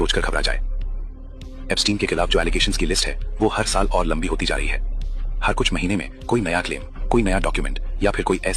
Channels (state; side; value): identical; both; correlation 1.00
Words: घबरा जाए। एप्स्टीन के खिलाफ जो एलिगेशंस की लिस्ट है वो हर साल और लंबी होती जा रही है। हर कुछ महीने में कोई नया क्लेम, कोई नया डॉक्यूमेंट या फिर कोई